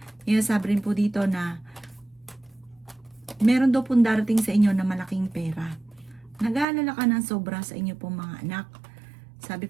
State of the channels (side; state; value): left; drops out; at 6.7 s